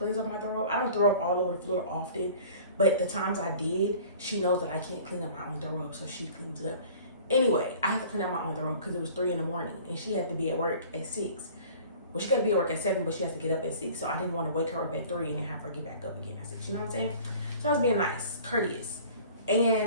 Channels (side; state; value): both; inverted; correlation -0.46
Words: up my throw up. I don't throw up all over the floor often, but the times I did, she knows that I can't clean up my own throw up, so she cleans it up. Anyway, I had to clean up my own throw up because it was 3 in the morning and she had to be at work at 6. Well, she got to be at work at 7, but she has to get up at 6. So I didn't want to wake her up at 3 and then have her get back up again at 6. You know what I'm saying? So I was being nice, courteous.